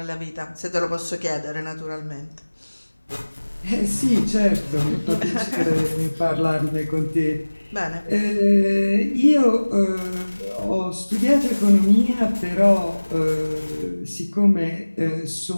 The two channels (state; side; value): inverted; both; correlation -1.00